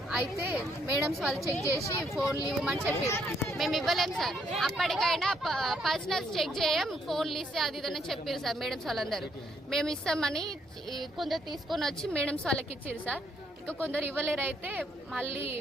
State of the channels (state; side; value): normal; both; correlation 0.72